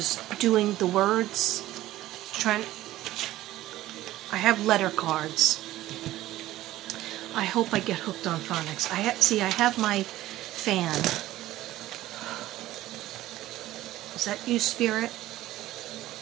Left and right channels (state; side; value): quieter; left; 15.3 dB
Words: doing the words. I have letter cards. I hope I get hooked on phonics. I have my fan. Is that you, Spirit?